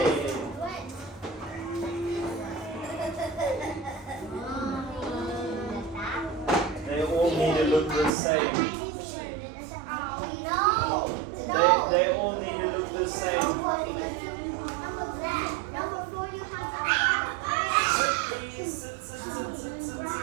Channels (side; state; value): left; drops out; at 8.1 s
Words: They all need to look the same. They all need to look the same. Please sit, sit, sit, sit, sit,